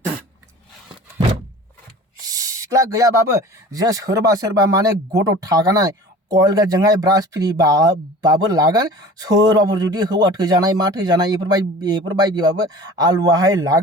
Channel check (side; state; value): both; normal; correlation 0.41